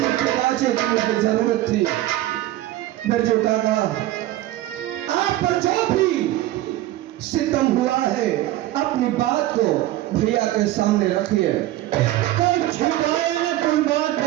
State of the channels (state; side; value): quieter; left; 15.3 dB